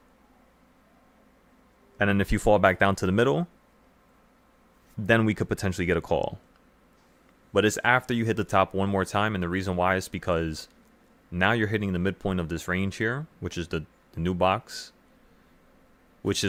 And then if you fall back down to the middle, then we could potentially get a call. But it's after you hit the top one more time, and the reason why is because now you're hitting the midpoint of this range here, which is the new box, which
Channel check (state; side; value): identical; both; correlation 1.00